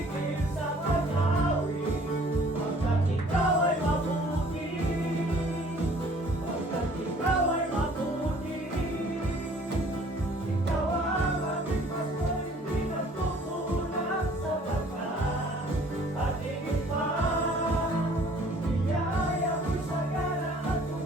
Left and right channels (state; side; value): normal; both; correlation 0.54